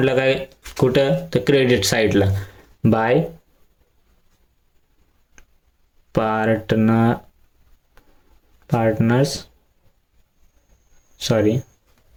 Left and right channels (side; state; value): both; identical; correlation 1.00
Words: काय कुठं तर क्रेडिट साईडला बाय